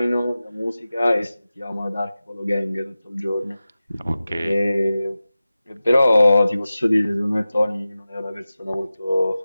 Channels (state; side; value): inverted; both; correlation -0.95